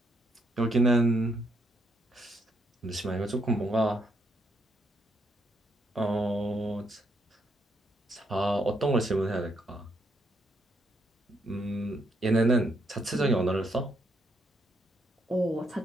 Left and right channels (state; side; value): normal; both; correlation 0.75